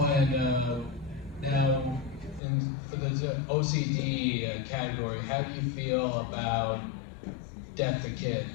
and now, for the OCD category, how do you feel about Death the Kid?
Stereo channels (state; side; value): drops out; right; at 2.4 s